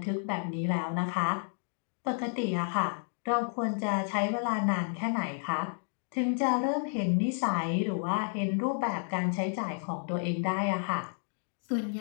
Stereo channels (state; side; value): silent; right; 57 dB below the other